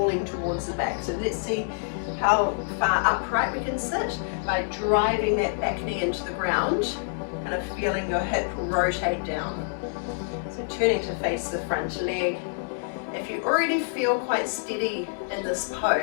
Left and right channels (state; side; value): silent; right; digital silence